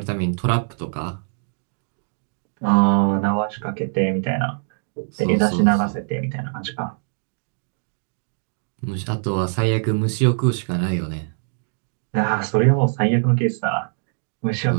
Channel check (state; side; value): silent; left; digital silence